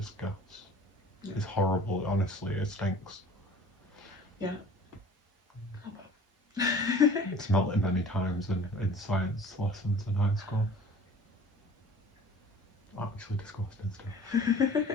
Yeah. It's horrible, honestly, it stinks. Yeah. Smelt it many times in science lessons in high school. Actually disgusting stuff.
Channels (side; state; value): both; normal; correlation 0.46